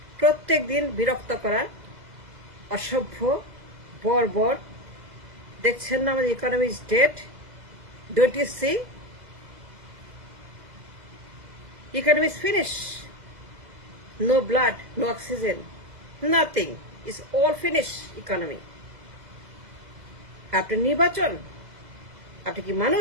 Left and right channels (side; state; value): left; late; 2.0 ms